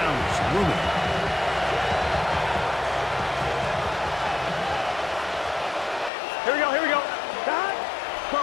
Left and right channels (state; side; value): drops out; right; at 6.1 s